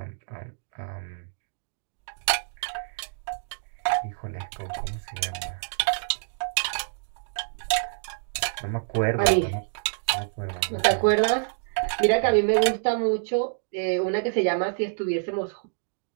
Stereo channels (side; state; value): left; silent; digital silence